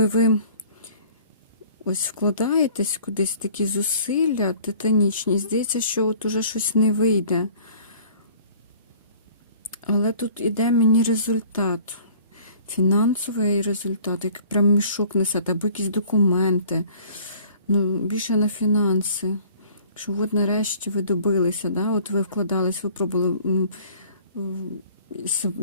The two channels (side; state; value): both; inverted; correlation -0.52